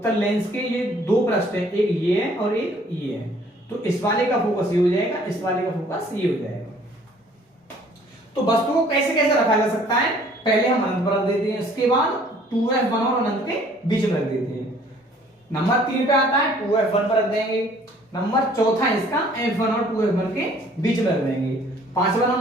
लेंस के ये दो पृष्ठ है, एक ये है और एक ये है, तो इस वाले का फोकस ये हो जाएगा, इस वाले का फोकस ये हो जाएगा। तो वस्तु को कैसे कैसे रखा जा सकता है, पहले हम अनंत पर रख देते हैं, इसके बाद 2f1 और अनंत के बीच में रख देते हैं। नंबर 3 पे आता है 2f1 पर रख देंगे। नंबर चौथा इसका f1 और 2f1 के बीच में रख देंगे। पांचवा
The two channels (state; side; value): normal; both; correlation 0.57